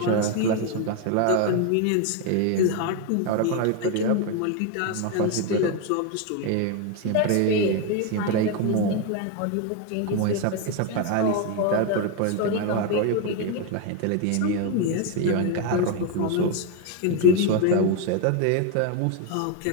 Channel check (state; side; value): different; both; correlation 0.02